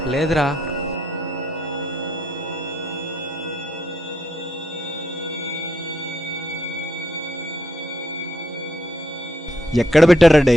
లేదురా. ఎక్కడ పెట్టారా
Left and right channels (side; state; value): both; normal; correlation 0.77